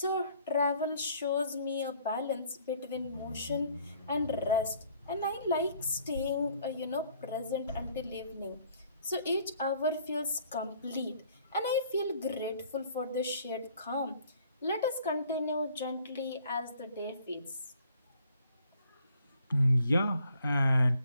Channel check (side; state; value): both; inverted; correlation -0.60